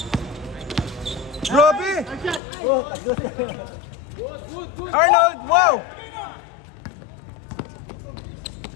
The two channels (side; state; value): right; drops out; at 2.4 s